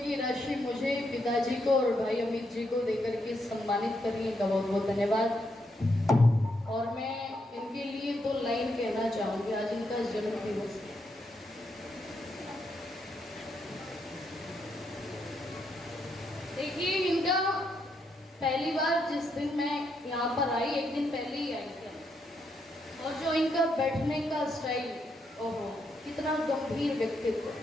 राशि मुझे, पिताजी को और भाई अमित जी को देकर के सम्मानित करने का बहुत बहुत धन्यवाद। और मैं इनके लिए 2 लाइन कहना चाहूंगी। आज इनका जन्म दिवस है। देखिए, इनका पहली बार जिस दिन मैं यहाँ पर आई, एक दिन पहले ही आई थी, और जो इनका बैठने का स्टाइल, ओहो कितना गंभीर व्यक्तित्व।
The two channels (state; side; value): normal; both; correlation 0.79